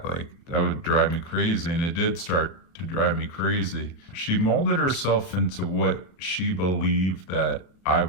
Like, that would drive me crazy. And it did start to drive me crazy. She molded herself into what she believed that I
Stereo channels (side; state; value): right; late; 33 ms